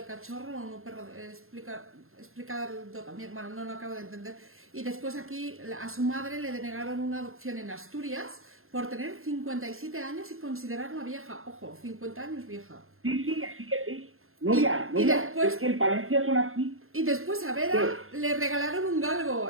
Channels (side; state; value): left; late; 0.61 ms